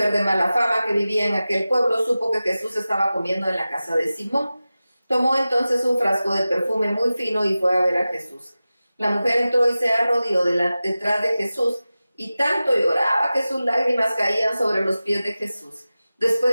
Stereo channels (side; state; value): both; inverted; correlation -0.95